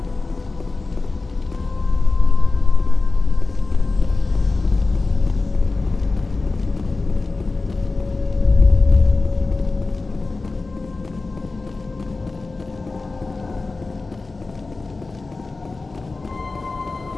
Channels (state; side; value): quieter; right; 3.6 dB